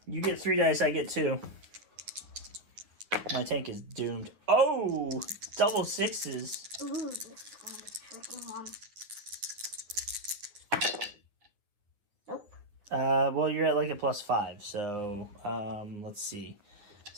You get 3 dice, I get 2. My tank is doomed. Oh, double 6s. Ooh, this is going to be a tricky one. Nope. Well, you're at like a +5, so let's see,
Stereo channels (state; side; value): late; left; 10 ms